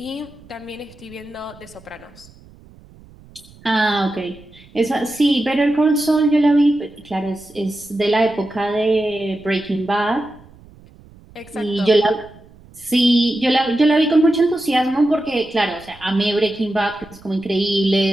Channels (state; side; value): noise; right; rumble, 24 dB below the sound